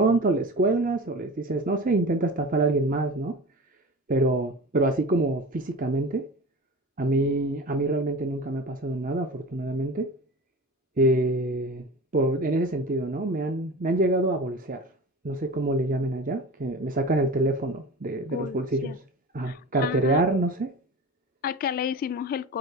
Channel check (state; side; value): normal; both; correlation 0.33